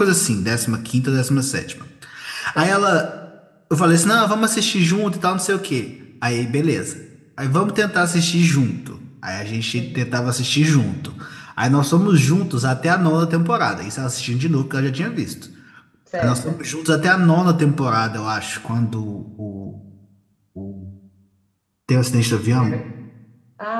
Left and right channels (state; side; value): identical; both; correlation 1.00